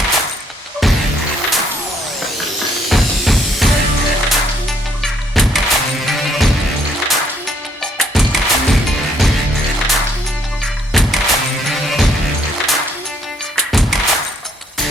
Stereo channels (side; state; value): both; normal; correlation 0.67